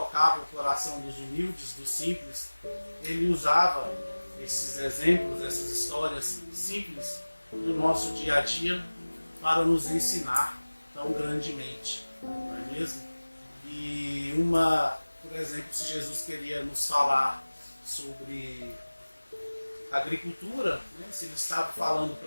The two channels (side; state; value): both; inverted; correlation -1.00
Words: o coração dos humildes, dos simples, ele usava esses exemplos, essas histórias simples do nosso dia a dia para nos ensinar tão grandemente, não é mesmo? E por exemplo, se Jesus queria nos falar sobre agricultura, né? Se ele estava falando